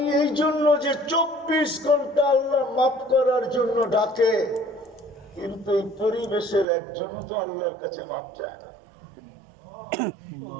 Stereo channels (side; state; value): left; drops out; at 6.7 s